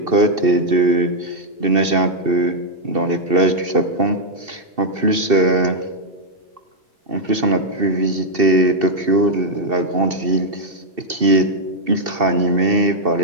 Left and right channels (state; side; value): late; left; 2.7 ms